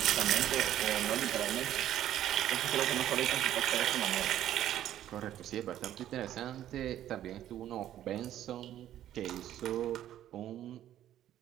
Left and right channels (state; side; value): quieter; left; 12.0 dB